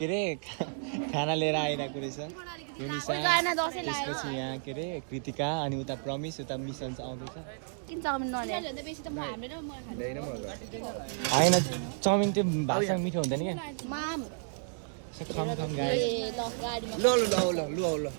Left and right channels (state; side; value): silent; left; digital silence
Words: अरे खाना लिएर आइरहेको रहेछ युनिसा त्यसपछि यहाँ के अरे कृतिका अनि उता प्रमिस उता मिसन आउँदैछ होइन चाउमिन त्यो भातसँग मिठो हुँदैन क्या So come guys.